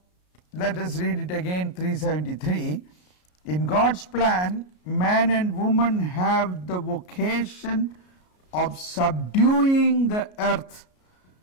let us read it again, 373. In God's plan, man and woman have the vocation of subduing the earth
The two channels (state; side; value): late; right; 33 ms